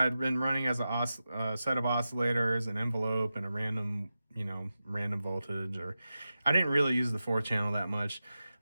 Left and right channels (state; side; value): inverted; both; correlation -0.92